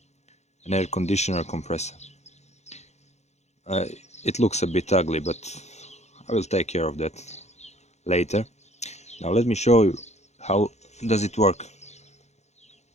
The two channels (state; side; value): late; right; 0.32 ms